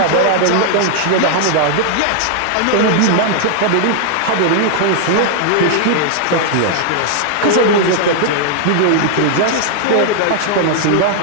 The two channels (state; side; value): different; both; correlation 0.00